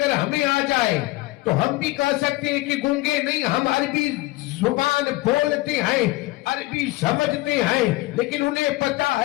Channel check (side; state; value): right; quieter; 19.8 dB